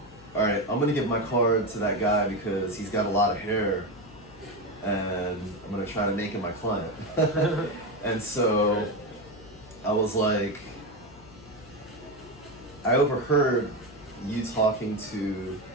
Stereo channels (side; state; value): left; noise; hum, 21 dB below the sound